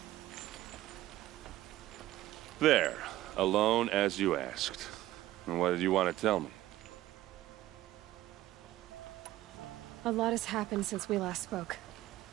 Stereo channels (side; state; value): left; quieter; 15.2 dB